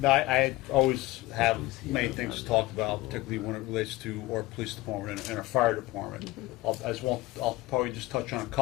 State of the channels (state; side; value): quieter; right; 19.2 dB